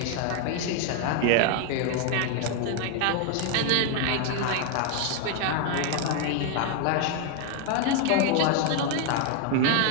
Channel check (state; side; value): different; both; correlation 0.01